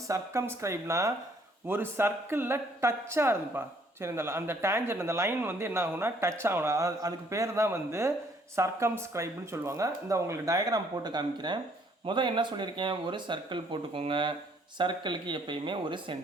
circumscribeனா ஒரு சர்க்கிளில் டச்சாக இருந்துப்பா. சரி, அந்த டேஞ்சர் அந்த லைன் வந்து என்ன ஆகும்னா டச் ஆகணும். அதுக்கு பேர் தான் வந்து சர்க்கம்ஸ்கிரைப்னு சொல்லுவாங்க. இந்த உங்களுக்கு டயக்ராம் போட்டு காமிக்கிறேன். முதல் என்ன சொல்லியிருக்கேன், ஒரு சர்க்கிள் போட்டுக்கோங்க. சர்க்கிளுக்கு எப்பயுமே ஒரு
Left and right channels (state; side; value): normal; both; correlation 0.64